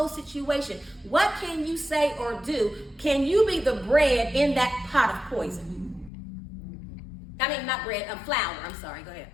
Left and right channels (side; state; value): right; drops out; at 6.1 s